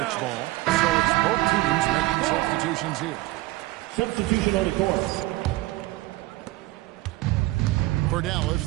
ball. So it's both teams making substitutions here. Substitution on the court. For Dallas,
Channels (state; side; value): quieter; left; 19.1 dB